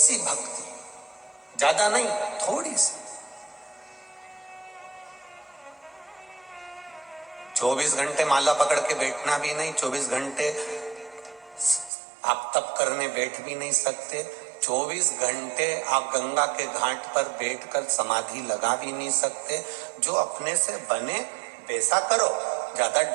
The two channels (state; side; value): drops out; left; at 11.9 s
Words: भक्ति, ज्यादा नहीं, थोड़ी सी, 24 घंटे माला पकड़ के बैठना भी नहीं, 24 घंटे आप तप करने बैठ भी नहीं सकते, 24 घंटे आप गंगा के घाट पर बैठकर समाधि लगा भी नहीं सकते। जो अपने से बने वैसा करो, ज्यादा